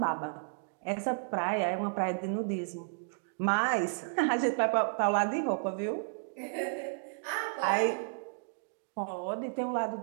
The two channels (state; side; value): silent; left; digital silence